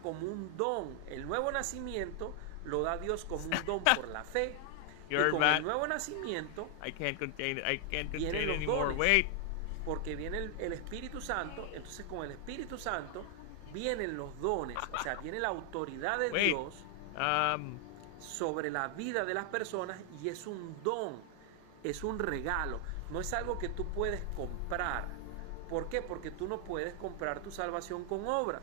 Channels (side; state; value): both; different; correlation 0.00